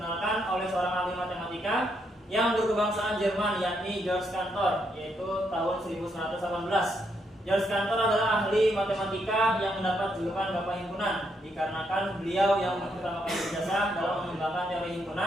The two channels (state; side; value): normal; both; correlation 0.77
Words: oleh seorang ahli matematika yang berkebangsaan Jerman, yakni Georg Cantor, yaitu tahun 1918. Georg Cantor adalah ahli matematika yang mendapat julukan Bapak Himpunan dikarenakan beliau yang pertama kali berjasa dalam mengembangkan teori